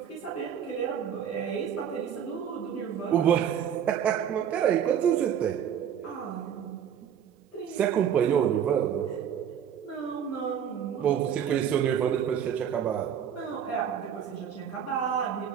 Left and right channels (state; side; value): quieter; left; 8.7 dB